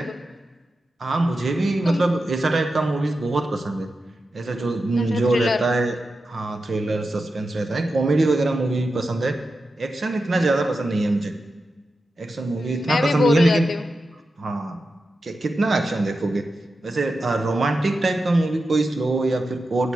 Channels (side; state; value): both; normal; correlation 0.90